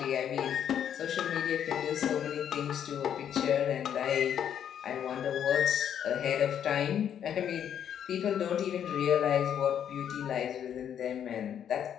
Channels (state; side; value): quieter; right; 9.2 dB